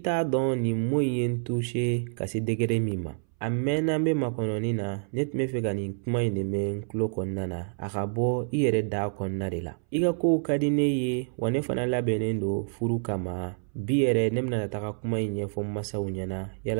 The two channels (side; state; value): left; silent; 59 dB below the other